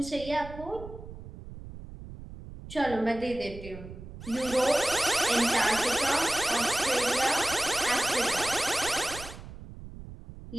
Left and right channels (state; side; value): noise; right; rumble, 14 dB below the sound